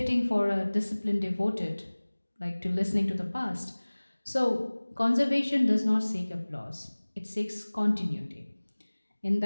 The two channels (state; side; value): inverted; both; correlation -1.00